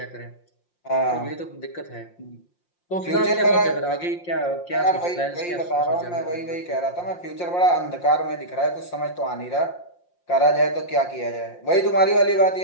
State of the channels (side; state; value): right; late; 5.7 ms